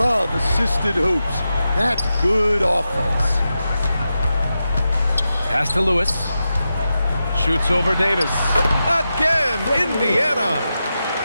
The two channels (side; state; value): both; inverted; correlation -0.90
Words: assisted hoops. That's good offense. Pass to Lewis. Shoots over Davis. Again, Indiana.